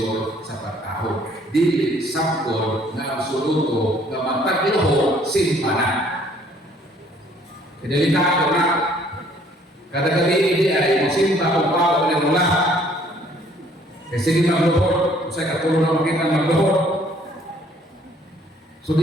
sa pagtaho. Dili sakon nga absoluto nga magpagluhod simpa na. Delikado na. Kada gabi hindi ay magsimpa kung paano ulit mula. Kasi hindi magluhod, sa katulong na makita magluhod. So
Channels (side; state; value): both; normal; correlation 0.60